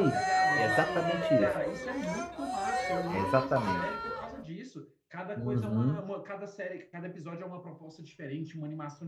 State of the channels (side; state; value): both; identical; correlation 1.00